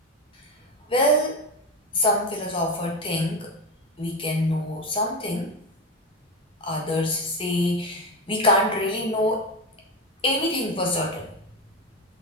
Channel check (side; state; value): both; normal; correlation 0.17